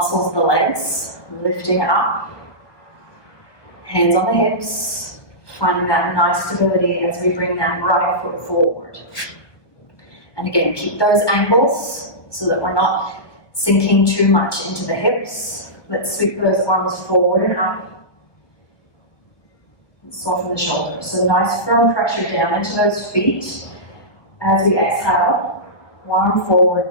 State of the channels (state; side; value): late; right; 1.2 ms